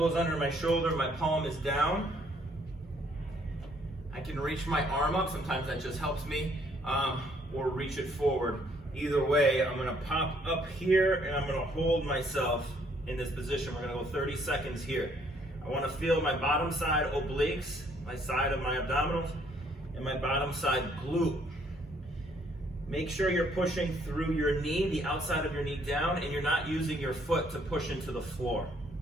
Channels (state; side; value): normal; both; correlation 0.66